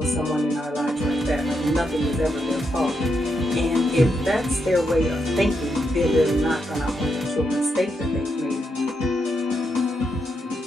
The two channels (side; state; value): both; normal; correlation 0.82